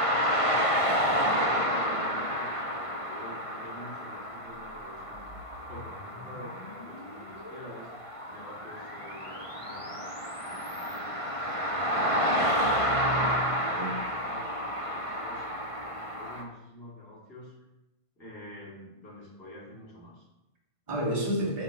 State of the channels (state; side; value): late; right; 1.5 ms